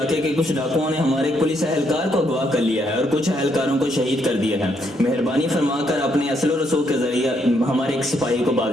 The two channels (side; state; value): both; normal; correlation 0.74